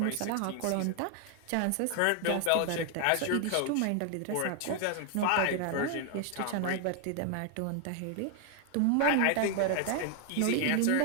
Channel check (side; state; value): both; different; correlation 0.00